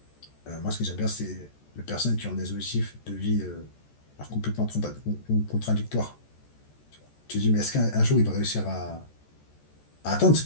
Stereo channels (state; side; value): late; right; 14 ms